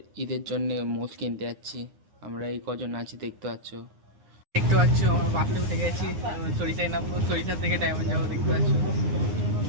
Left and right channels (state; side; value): late; left; 9.7 ms